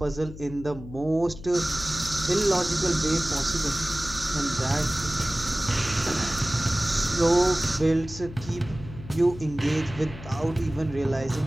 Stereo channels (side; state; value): left; noise; hum, 14 dB below the sound